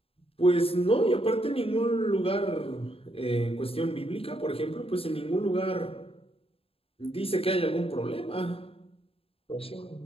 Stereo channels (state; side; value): late; right; 0.27 ms